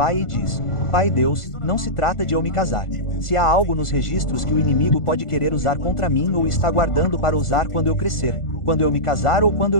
e diz, Pai Deus, não se trata de eu me casar. Se há algo nos registros que o inimigo pode querer usar contra mim ou está guardando para usar quando eu crescer, quando eu me casar ou quando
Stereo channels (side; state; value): right; late; 1.4 ms